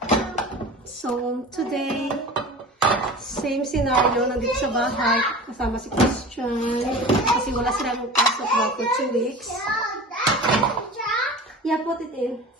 So, today, same scenario. Nandito sa bahay. Kasama si Christian. Kasi wala sila magpasok ba for 2 weeks. Yeah, put it in.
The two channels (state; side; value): normal; both; correlation 0.35